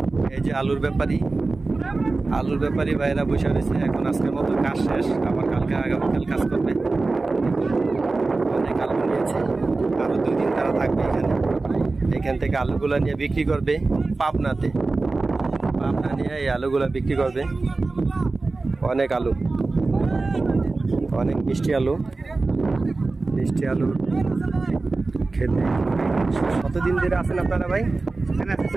এই যে আলুর ব্যাপারী ভাইরা বসে রয়েছে। এখন আজকের মতো কাজ শেষ, আবার কালকে আগামীকাল কাজ করবে। অনেক আলু নিয়েছে, আরো 2 দিন তারা থাকবে এখানে। এখান থেকে আলুগুলা নিয়ে বিক্রি করবে পাবনা নিয়ে এই আলুগুলা বিক্রি করবে। অনেক আলু, অনেক মিষ্টি আলু খেতে। কতদিন ধরে আছেন আপনারা ভাই?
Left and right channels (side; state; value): left; quieter; 3.6 dB